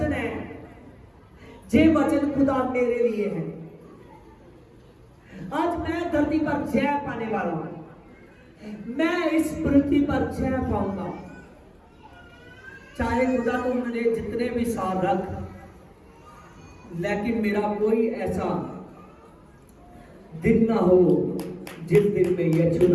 है, ये वचन खुदा मेरे लिए है। आज मैं धरती पर जय पाने वाला हूं। मैं इस पृथ्वी पर जय पाऊंगा। चाहे खुदा तो मुझे जितने भी साल रख, लेकिन मेरा कोई ऐसा दिन ना हो जिस दिन में यीशु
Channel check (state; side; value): identical; both; correlation 1.00